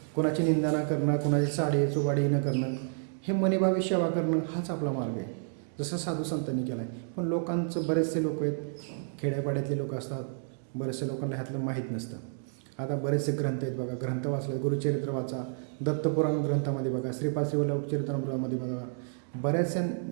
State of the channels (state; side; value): silent; left; digital silence